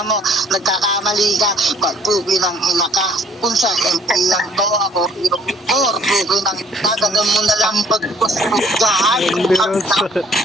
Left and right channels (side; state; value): both; normal; correlation 0.59